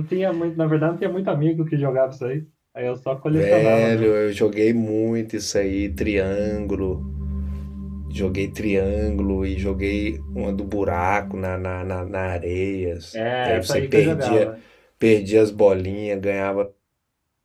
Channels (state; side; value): identical; both; correlation 1.00